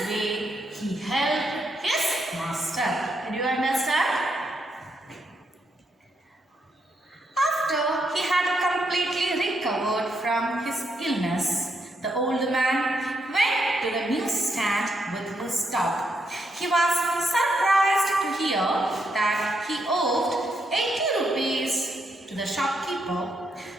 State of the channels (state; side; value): normal; both; correlation 0.79